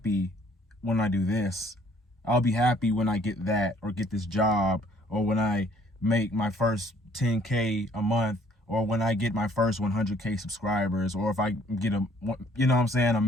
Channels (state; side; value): normal; both; correlation 0.60